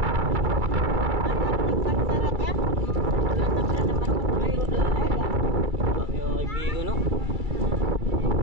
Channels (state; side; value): late; left; 2.3 ms